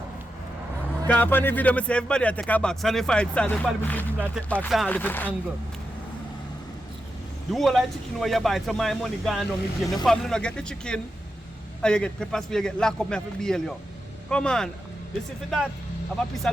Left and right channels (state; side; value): normal; both; correlation 0.88